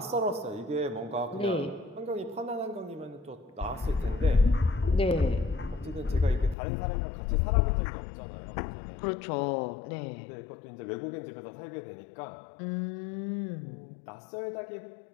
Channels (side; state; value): right; drops out; at 6.6 s